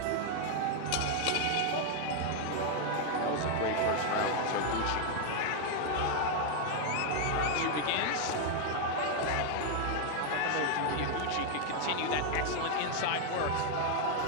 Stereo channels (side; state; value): both; different; correlation 0.00